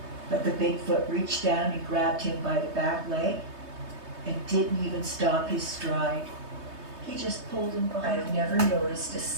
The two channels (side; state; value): left; late; 3.2 ms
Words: But the Bigfoot reached down and grabbed him by the back leg and didn't even stop his stride. He just pulled him behind. I've never noticed a